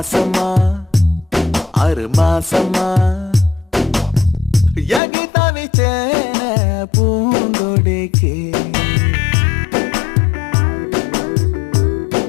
6 மாசமா எங்கி தவிச்சேனே பூங்கொடிக்கு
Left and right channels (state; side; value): drops out; right; at 5.0 s